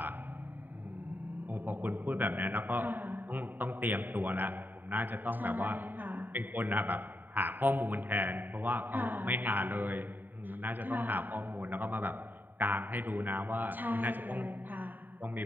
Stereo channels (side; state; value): left; late; 0.090 ms